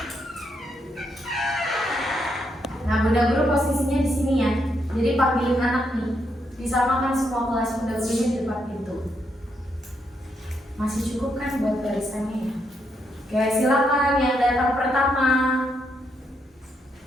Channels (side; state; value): both; normal; correlation 0.78